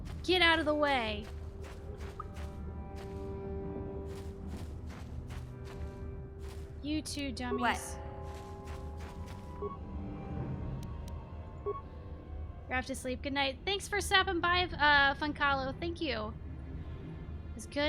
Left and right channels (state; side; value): identical; both; correlation 1.00